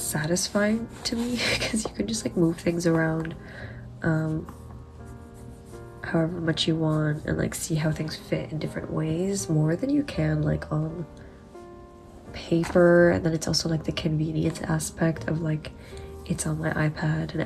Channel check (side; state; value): both; identical; correlation 1.00